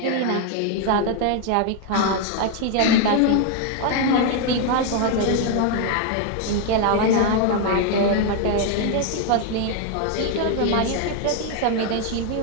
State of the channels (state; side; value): different; both; correlation 0.01